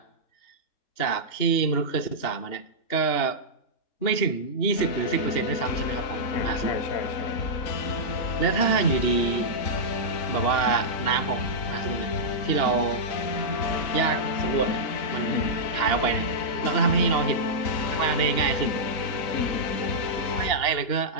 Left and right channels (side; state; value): right; late; 2.9 ms